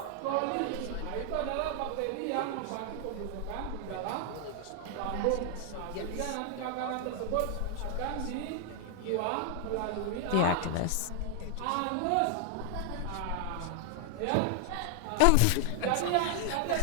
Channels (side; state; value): both; different; correlation 0.00